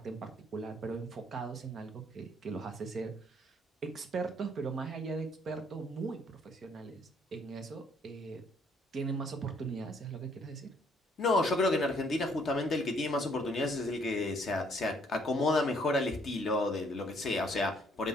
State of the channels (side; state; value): both; normal; correlation 0.65